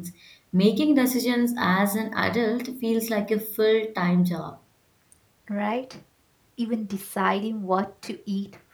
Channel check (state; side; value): identical; both; correlation 1.00